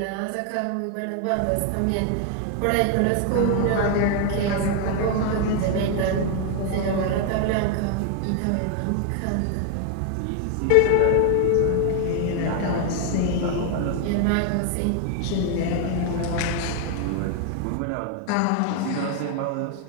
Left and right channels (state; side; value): different; both; correlation 0.01